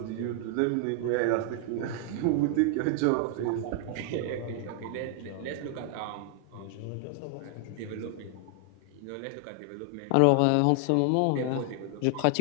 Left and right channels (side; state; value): both; different; correlation 0.00